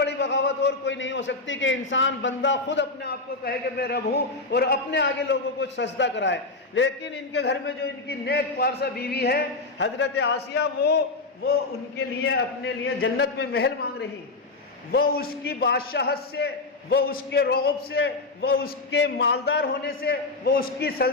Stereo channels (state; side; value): quieter; right; 3.5 dB